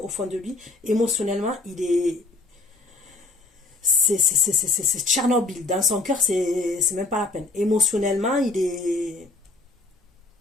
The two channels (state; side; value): quieter; right; 3.3 dB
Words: fond de lui, émotionnellement, il est... C'est Tchernobyl. Dans son cœur, c'est même pas la peine. Émotionnellement, il est...